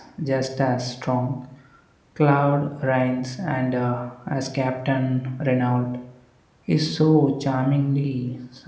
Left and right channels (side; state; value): both; identical; correlation 1.00